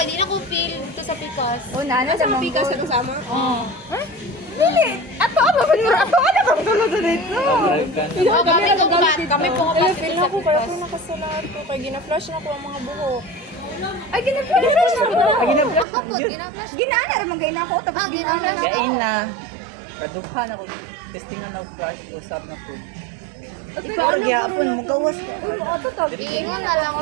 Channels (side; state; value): left; drops out; at 15.9 s